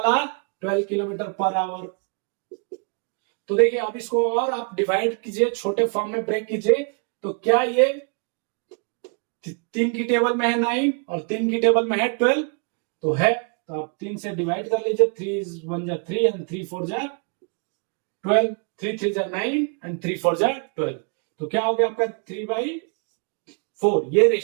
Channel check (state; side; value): quieter; left; 37.2 dB